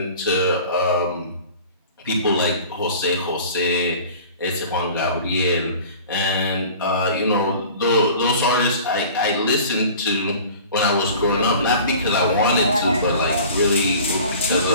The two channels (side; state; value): both; inverted; correlation -0.43